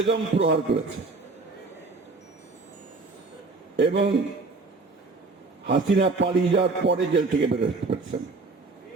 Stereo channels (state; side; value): quieter; left; 3.7 dB